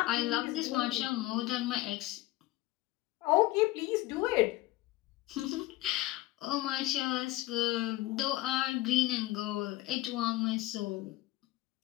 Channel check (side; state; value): right; quieter; 17.8 dB